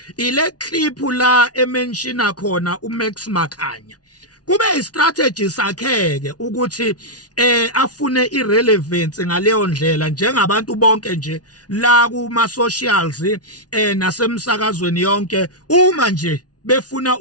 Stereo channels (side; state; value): right; late; 0.69 ms